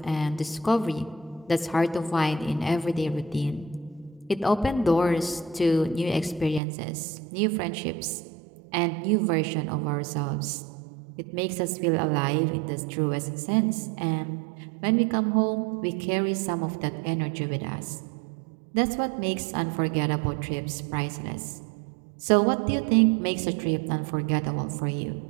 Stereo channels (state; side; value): drops out; left; at 6.6 s